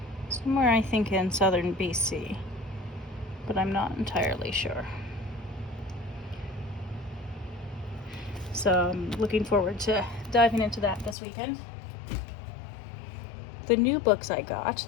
somewhere, I think, in southern BC, but I'm not entirely sure. So I'm looking forward to diving into that this weekend. The new books I got,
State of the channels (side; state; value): right; drops out; at 11.2 s